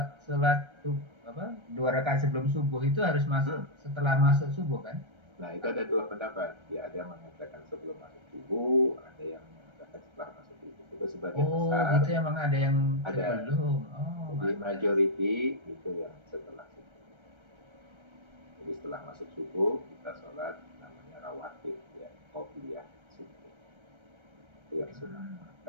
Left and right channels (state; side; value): late; left; 1.3 ms